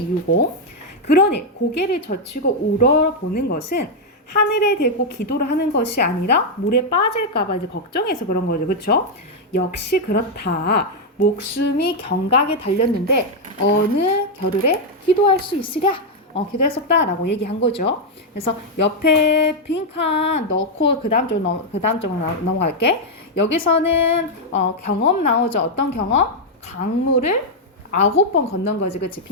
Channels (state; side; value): normal; both; correlation -0.01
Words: 그러니 고개를 젖히고 우러보는 것은 하늘에 대고 기도를 하는 것이 아니라 물에 빠질까봐 이제 걱정해서 그런 거죠. 그쵸? 역시 그렇다. 목숨이 경각에 달렸는데 어느 겨를에 기도할 수 있으랴? 기도할 수 없다라고 얘기한 거죠. 그래서 옆에 빈칸 넣고 그 다음 쪽으로 넘어갈게. 여기서는 경험 나오죠. 어떤 경험? 강물을 9번 건넌 거지. 그치?